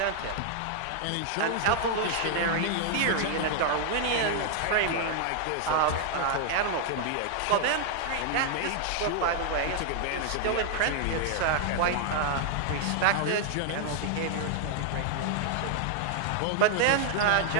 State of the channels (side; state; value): both; different; correlation 0.00